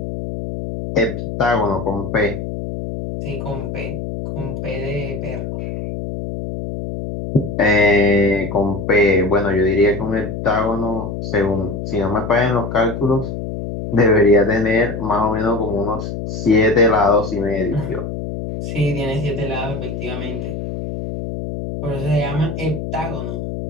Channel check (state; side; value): noise; left; hum, 6 dB below the sound